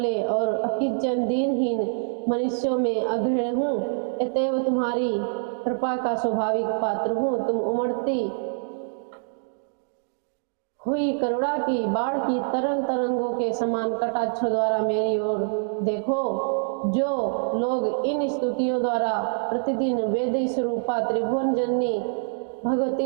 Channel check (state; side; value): silent; left; digital silence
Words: और अकिंचन दीनहीन मनुष्यों में अग्रणी हूँ। अतएव तुम्हारी कृपा का स्वाभाविक पात्र हूँ। तुम उमड़ती हुई करुणा की बाढ़ की तरंग तरंगों के समान कटाक्षों द्वारा मेरी ओर देखो। जो लोग इन स्तुतियों द्वारा प्रतिदिन वेद स्वरूपा त्रिभुवन जननी